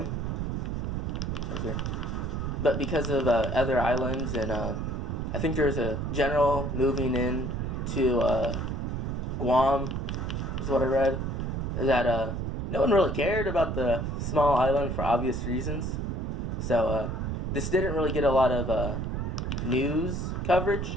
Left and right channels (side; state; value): right; noise; rumble, 2 dB below the sound